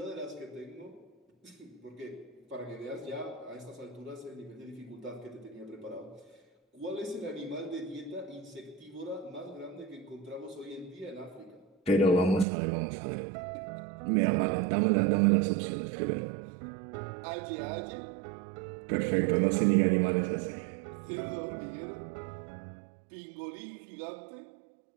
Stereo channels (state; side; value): drops out; left; at 12.5 s